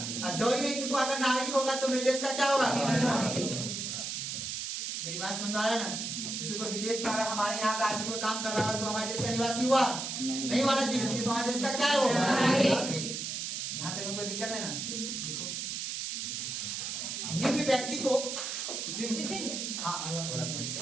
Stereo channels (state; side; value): noise; right; hiss, 4 dB below the sound